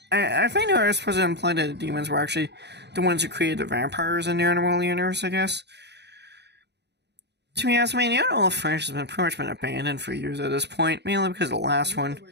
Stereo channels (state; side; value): late; left; 0.50 ms